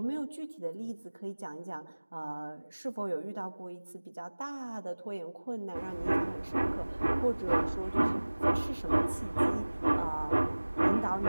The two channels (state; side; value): inverted; both; correlation -1.00